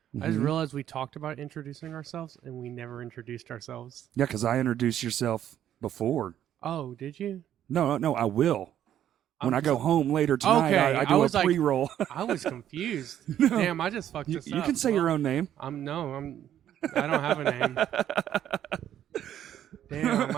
I just Mhm. realized we talked about introducing ourselves, and we never introduced ourselves. Yeah, because I introduced yourself before. Oh, did you? No, I will. When I'm I go so- home later tonight, Okay, I I do a was like- pre-roll. I was confused. No. Damn, I just fucked you this up. can say your own name. I don't have a name. Damn,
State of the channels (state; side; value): quieter; left; 10.8 dB